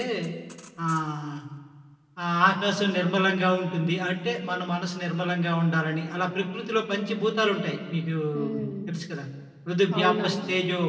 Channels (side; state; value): both; identical; correlation 1.00